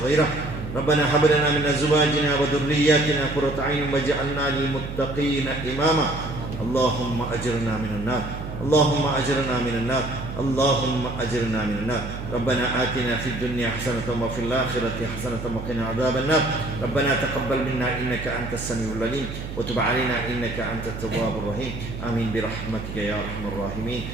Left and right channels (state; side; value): noise; right; hum, 8 dB below the sound